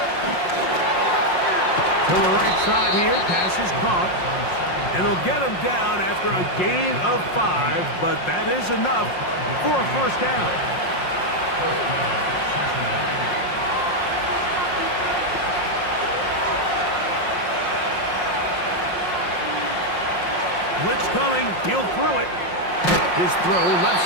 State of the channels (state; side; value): late; right; 5.6 ms